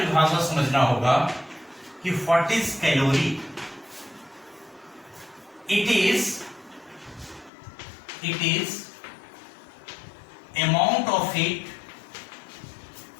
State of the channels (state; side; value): drops out; right; at 7.5 s